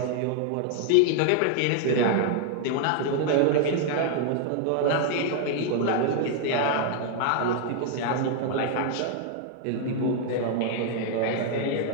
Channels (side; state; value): both; different; correlation 0.00